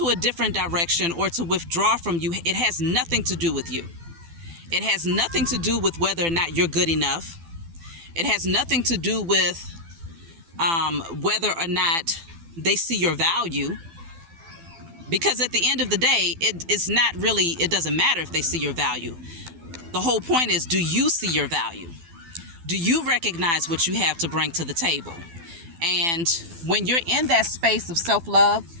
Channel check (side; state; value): left; late; 12 ms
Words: a different direction or to withdraw from you, it has nothing to do with you. It has nothing to do with whether or not you're good enough. It has nothing to do with whether or not they see your value. Because at the end of the day, it doesn't matter if they see your value. The whole point is, do you see your value? Do you recognize what you have to bring to the table? And when you're in that space of self-love,